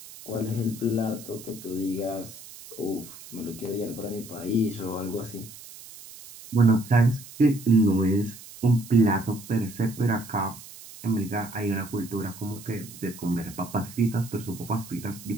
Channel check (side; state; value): right; noise; hiss, 17 dB below the sound